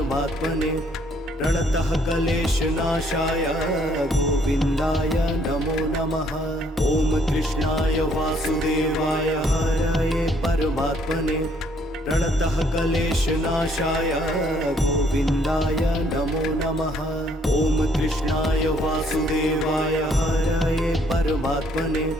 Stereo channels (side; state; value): both; normal; correlation 0.66